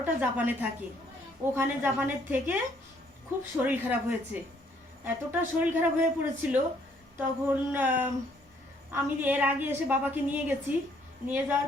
জাপানে থাকে। ওখানে জাপানের থেকে খুব শরীর খারাপ হয়েছে, এতটা শরীর খারাপ হয়ে পড়েছিল তখন আমি এর আগে এসে বাবাকে নিয়ে গেছি, নিয়ে যাওয়ার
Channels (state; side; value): normal; both; correlation 0.66